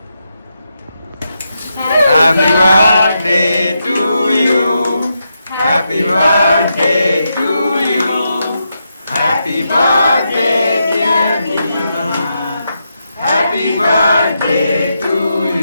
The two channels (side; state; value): both; inverted; correlation -0.84